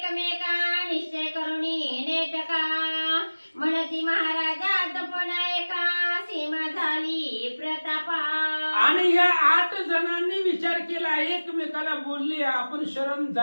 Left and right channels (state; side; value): inverted; both; correlation -1.00